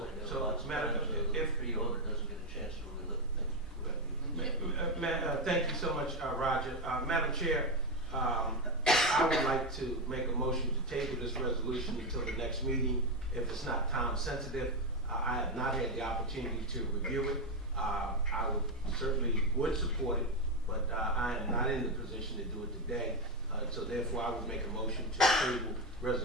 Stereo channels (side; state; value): both; normal; correlation 0.09